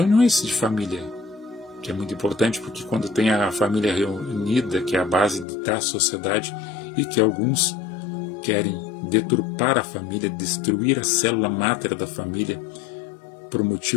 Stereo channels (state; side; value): drops out; right; at 5.5 s